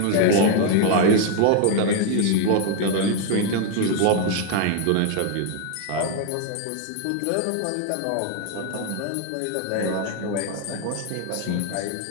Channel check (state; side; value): different; both; correlation 0.01